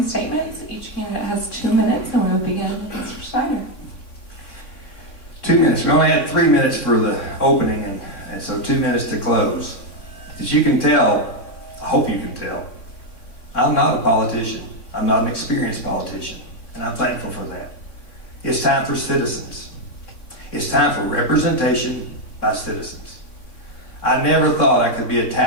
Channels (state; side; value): late; right; 3.5 ms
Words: statements. Each candidate has 2 minutes, and we'll begin with Mr. Snyder. 2 minutes. We only had 3 minutes for the opening, and so 2 minutes to close. As you can tell, I hope you can tell, I'm not a politician. I'm not an experienced politician, and I'm thankful for that. It's time for citizens. It's time for representation by citizens. I never thought I could be